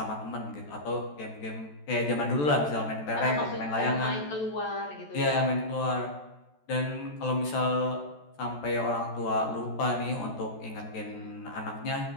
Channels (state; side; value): late; right; 14 ms